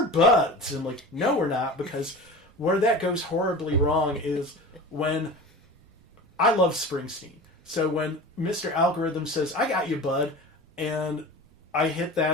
buds, and like, no, we're not, because where that goes horribly wrong is when I love Springsteen. So when Mr. Algorithm says, I got you, bud, and I hit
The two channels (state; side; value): noise; right; rumble, 29 dB below the sound